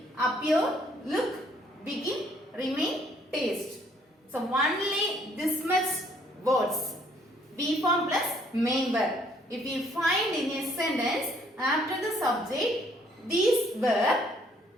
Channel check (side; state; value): both; normal; correlation 0.64